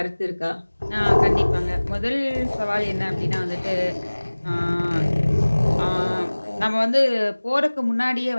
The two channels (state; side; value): inverted; both; correlation -1.00